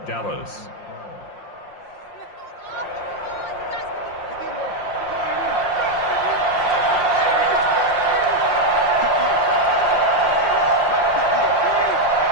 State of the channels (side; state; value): right; late; 5.7 ms